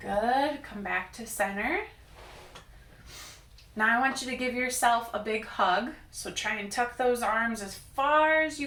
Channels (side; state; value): both; identical; correlation 1.00